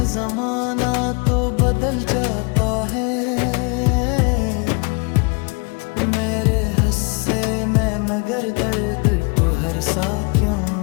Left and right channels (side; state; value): right; quieter; 32.4 dB